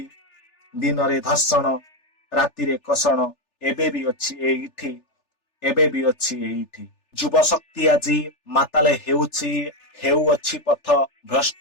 दिन रे धर्षण, राति रे कषण, एबे भी अछि एइठी, एबे भी अछि एइठी। युव शक्ति आज माताले हेउअछि पथ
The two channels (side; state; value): right; late; 3.4 ms